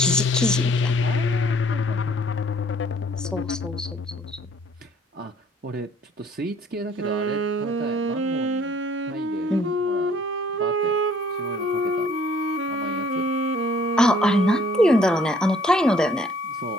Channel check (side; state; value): both; normal; correlation 0.59